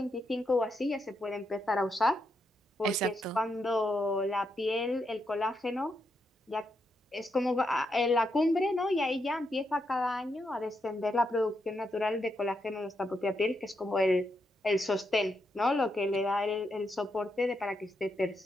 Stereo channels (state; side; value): normal; both; correlation 0.82